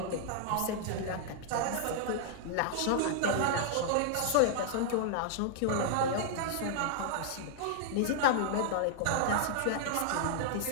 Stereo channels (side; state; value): both; different; correlation -0.01